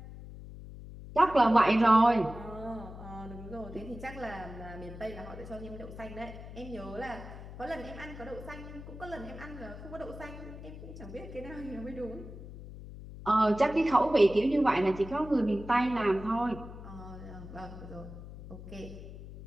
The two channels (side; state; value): left; noise; hum, 13 dB below the sound